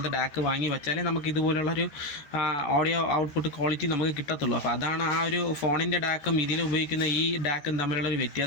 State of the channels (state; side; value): late; right; 14 ms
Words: ഡാക്ക് വാങ്ങി വെച്ചാലേ നമുക്ക് ഇതുപോലുള്ളൊരു ഓഡിയോ ഔട്ട്പുട്ട് ക്വാളിറ്റി നമുക്ക് കിട്ടത്തുള്ളൂ. അപ്പോൾ അതാണ് ആ ഒരു ഫോണിൻ്റെ ഡാക്കും ഇതിൽ ഉപയോഗിക്കുന്ന ഈ ഡാക്കും തമ്മിലുള്ളൊരു